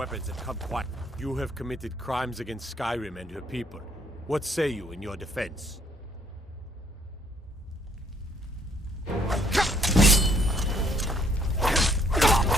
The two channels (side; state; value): both; normal; correlation 0.65